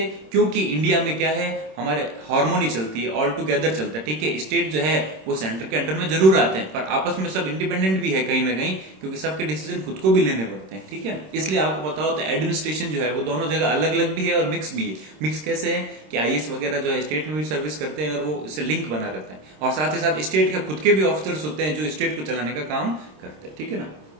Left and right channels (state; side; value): late; left; 26 ms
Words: क्योंकि इंडिया में क्या है, हमारे हार्मोनी चलती है, ऑल टुगेदर चलता है, ठीक है। स्टेट जो है वो सेंटर के अंडर में जरूर आते हैं, पर आपस में सब इंडिपेंडेंट भी है कहीं ना कहीं, क्योंकि सबके डिसीजन खुद को भी लेने पड़ते हैं, ठीक है। इसलिए आपको पता होता है एडमिनिस्ट्रेशन जो है वो दोनों जगह अलग अलग भी है और मिक्स भी है। मिक्स कैसे है कि आईएएस वगैरह जो है स्टेट में भी सर्विस करते हैं और वो इससे लिंक बना रहता है, और साथ ही साथ स्टेट के खुद के भी ऑफिसर्स होते हैं जो स्टेट को चलाने का काम करते हैं, ठीक है ना।